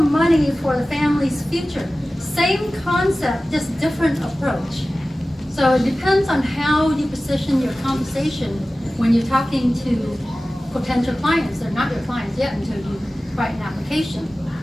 for the family's future. Same concept, just different approach. So it depends on how you position your conversation when you're talking to potential clients. They're not your clients yet until you write an application.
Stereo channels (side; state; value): both; normal; correlation 0.96